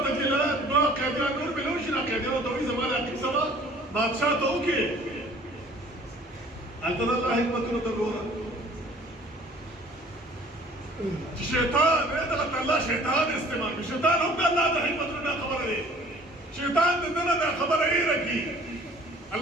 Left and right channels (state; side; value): normal; both; correlation 0.52